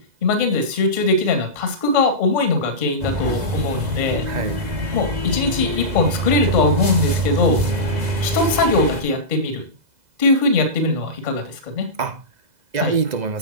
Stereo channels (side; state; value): left; late; 2.0 ms